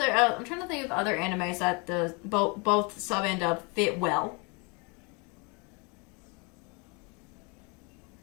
I'm trying to think of other animes that the both sub and dub fit well.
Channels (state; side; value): quieter; right; 31.2 dB